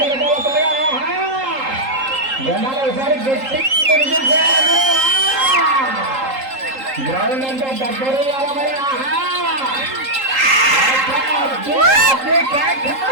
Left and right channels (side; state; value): left; late; 3.8 ms